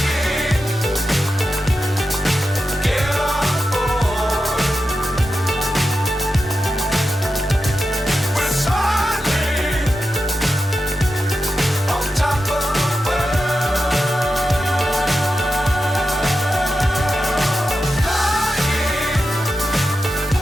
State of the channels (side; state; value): both; normal; correlation 0.90